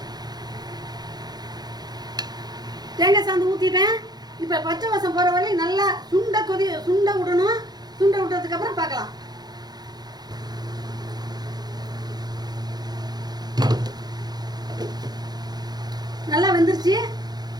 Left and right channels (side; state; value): left; late; 0.19 ms